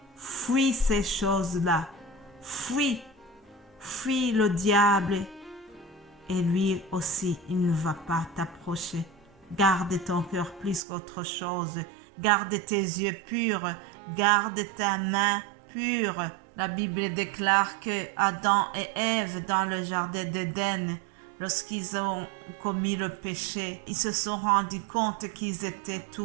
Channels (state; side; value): drops out; left; at 10.8 s